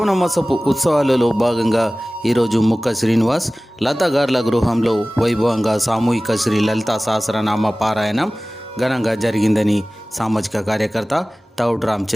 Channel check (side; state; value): both; normal; correlation 0.98